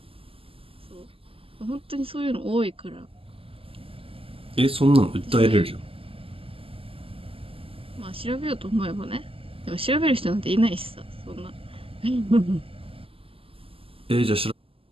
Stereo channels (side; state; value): left; late; 0.27 ms